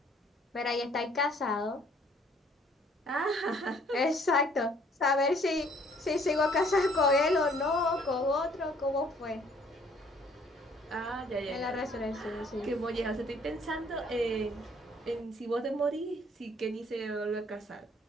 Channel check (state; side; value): normal; both; correlation 0.61